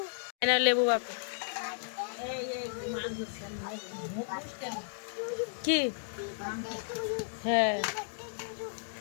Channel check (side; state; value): right; silent; digital silence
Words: লেবু বাপু কি? হ্যাঁ